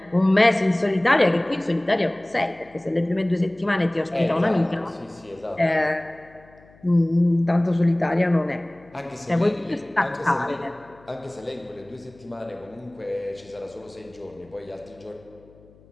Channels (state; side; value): noise; left; hum, 27 dB below the sound